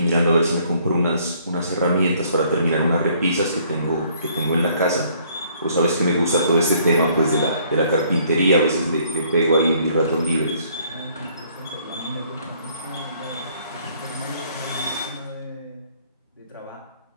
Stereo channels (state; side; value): inverted; both; correlation -0.63